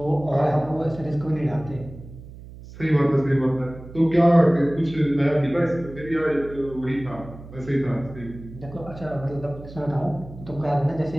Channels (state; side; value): noise; right; hum, 16 dB below the sound